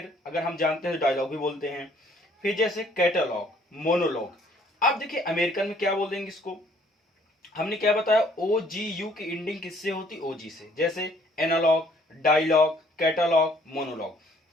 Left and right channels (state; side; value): normal; both; correlation 0.61